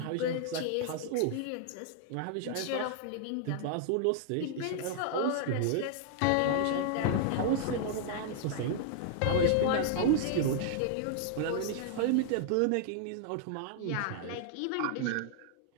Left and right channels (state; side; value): different; both; correlation -0.01